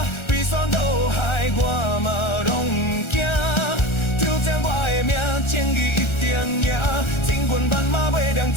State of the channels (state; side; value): late; right; 1.3 ms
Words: 悲酸倒海我嘛拢唔惊。挑战我的命，正义一定赢。千军万马袂当